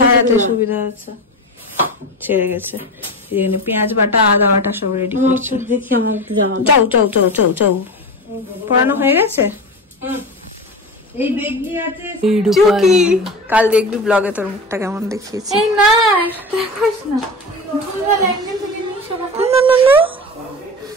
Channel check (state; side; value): normal; both; correlation 0.26